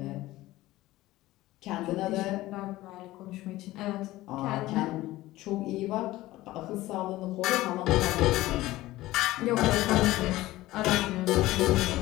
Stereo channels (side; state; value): right; quieter; 17.2 dB